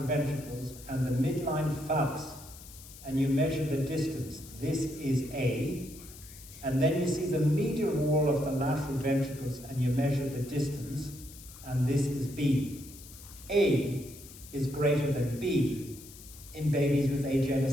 ventricles and the midline phallus, and you measure the distance. This is A, and then you see the medial wall of the lateral ventricles and you measure the distance, and this is B. A is greater than B in babies with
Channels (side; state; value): left; noise; hiss, 18 dB below the sound